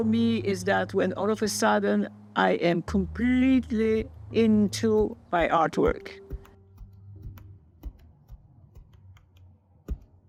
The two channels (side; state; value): both; identical; correlation 1.00